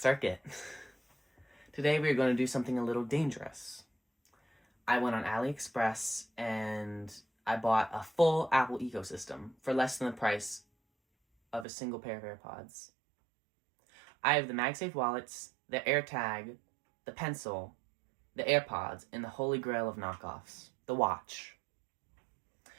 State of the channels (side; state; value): left; drops out; at 11.7 s